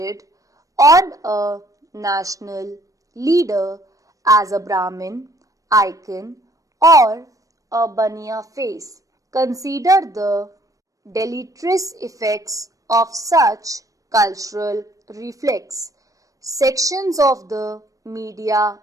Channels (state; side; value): late; left; 0.16 ms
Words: on a national leader as a Brahmin icon or a Baniya face? Consider the deleterious effects of such cultural reflex. Sections of the media